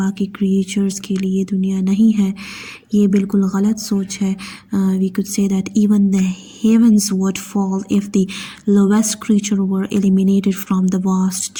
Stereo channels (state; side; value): identical; both; correlation 1.00